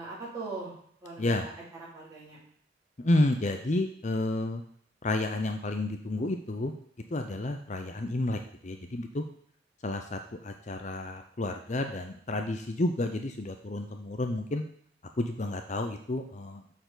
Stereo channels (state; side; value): normal; both; correlation 0.70